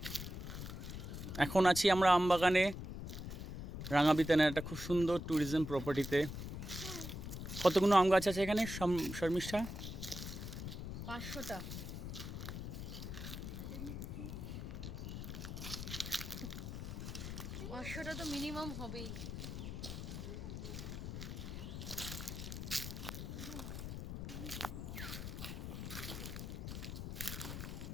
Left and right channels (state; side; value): noise; left; rumble, 6 dB below the sound